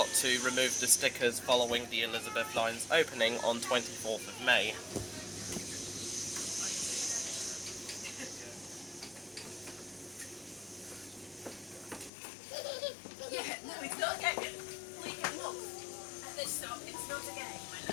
to remove the stickers following the Elizabeth line's opening on 24th of May. Yeah, no, it's not a game. We can look at this stop. It's not a game, my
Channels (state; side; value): drops out; right; at 12.1 s